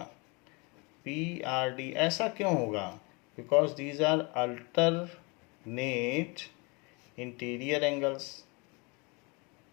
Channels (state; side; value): quieter; right; 29.2 dB